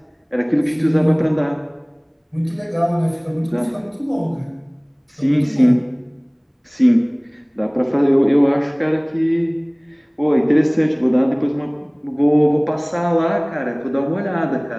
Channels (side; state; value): both; identical; correlation 1.00